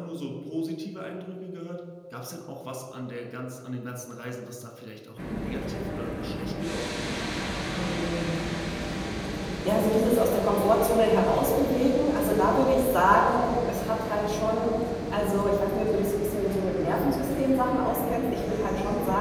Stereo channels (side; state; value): both; identical; correlation 1.00